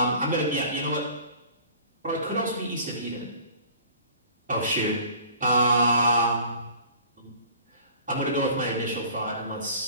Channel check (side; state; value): both; inverted; correlation -0.47